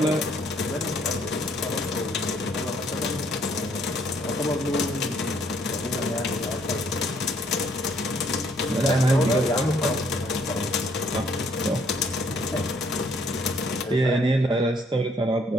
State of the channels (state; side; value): normal; both; correlation 0.66